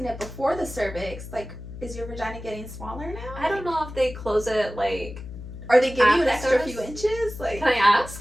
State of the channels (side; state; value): left; noise; hum, 12 dB below the sound